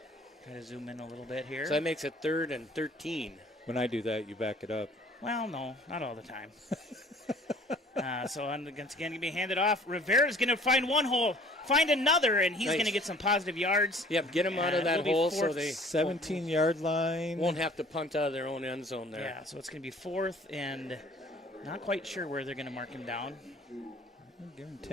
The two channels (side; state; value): both; normal; correlation 0.52